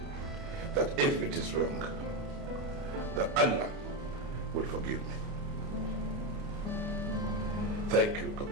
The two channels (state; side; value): late; left; 29 ms